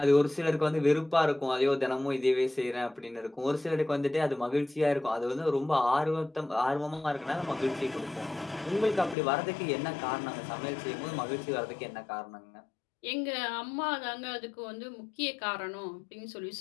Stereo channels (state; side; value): drops out; right; at 9.2 s